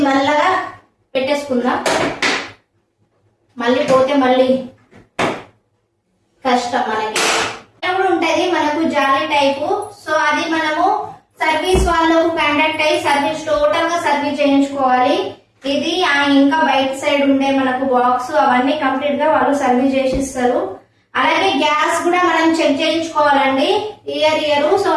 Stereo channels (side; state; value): both; identical; correlation 1.00